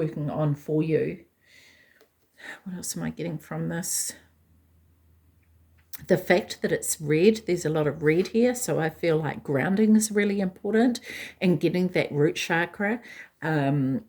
on for you. What else am I getting from this? The fact that it's red, there's a lot of red here, so I feel like grounding is really important and getting that root chakra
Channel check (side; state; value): both; identical; correlation 1.00